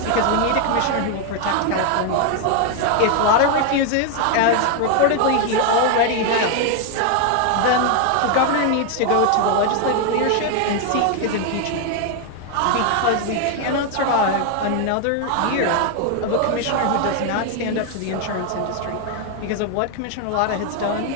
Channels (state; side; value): different; both; correlation 0.01